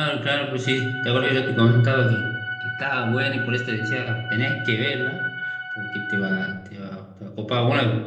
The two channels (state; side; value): identical; both; correlation 1.00